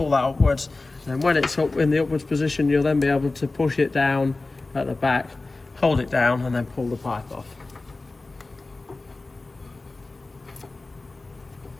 that upwards, and when it's up in the upwards position, you'll then be able to push it down at the back, hold it down, and then pull the pipe off.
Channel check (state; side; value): quieter; right; 3.3 dB